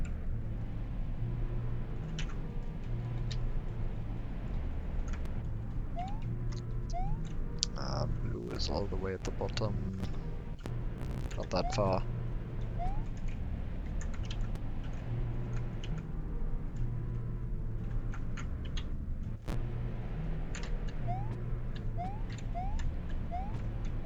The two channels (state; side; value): identical; both; correlation 1.00